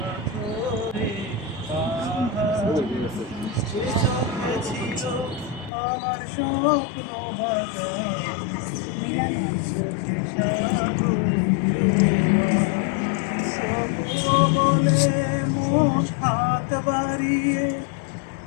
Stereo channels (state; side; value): drops out; right; at 5.7 s